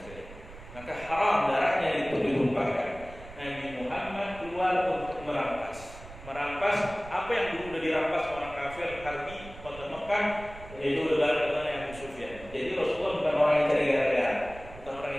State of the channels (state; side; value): noise; right; rumble, 17 dB below the sound